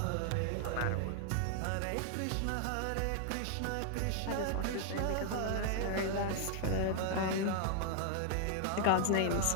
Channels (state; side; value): different; both; correlation 0.00